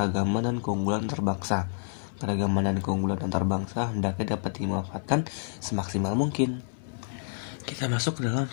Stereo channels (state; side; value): silent; right; 59 dB below the other